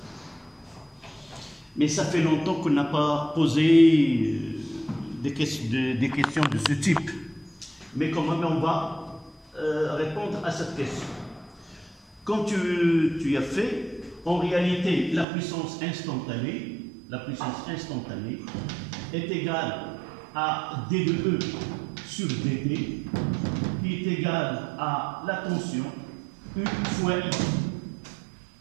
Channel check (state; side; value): drops out; left; at 15.2 s